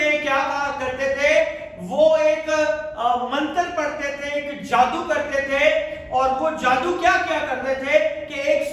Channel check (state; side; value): identical; both; correlation 1.00